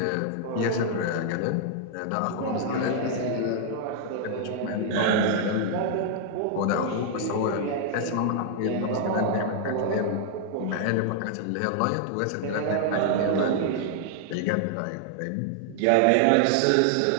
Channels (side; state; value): both; different; correlation 0.00